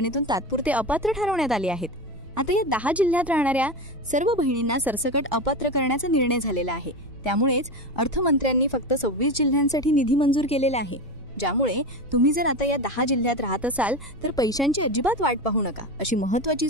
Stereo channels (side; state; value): right; noise; rumble, 20 dB below the sound